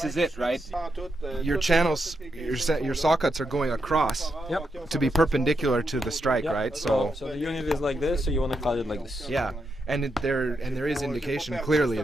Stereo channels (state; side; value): normal; both; correlation 0.83